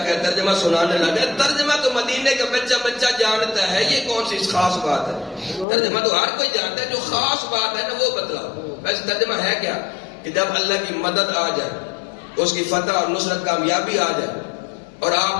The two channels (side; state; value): right; drops out; at 5.7 s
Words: ترجمہ سنانے لگے، ترجمہ تو مدینے کا بچہ بچہ جانتا ہے، یہ کون سی خاص بات ہے؟ ترجمہ تو ہر کوئی جانتا ہے، جو خاص بات ہے نا وہ بتلاؤ۔ ویسے ترجمہ ہے کیا کہ جب اللہ کی مدد آ جائے، اس کی فتح اور نصرت کامیابی آ جائے اور